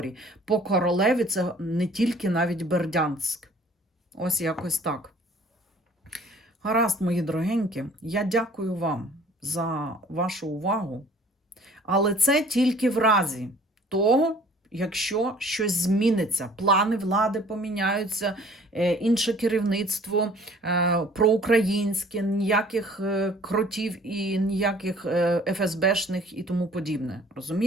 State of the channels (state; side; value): normal; both; correlation 0.53